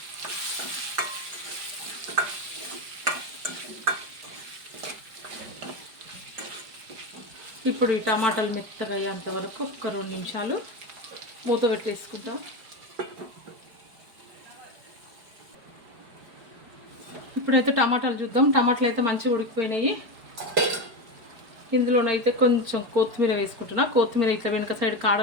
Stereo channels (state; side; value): late; left; 4.9 ms